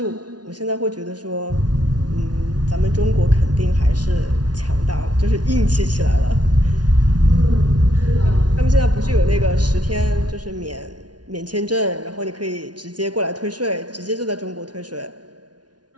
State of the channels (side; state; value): left; late; 0.69 ms